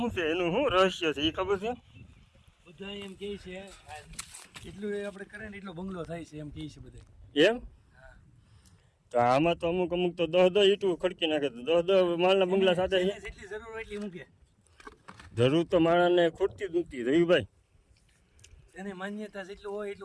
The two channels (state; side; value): identical; both; correlation 1.00